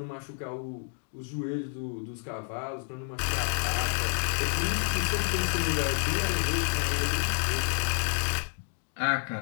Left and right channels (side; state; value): right; silent; 58 dB below the other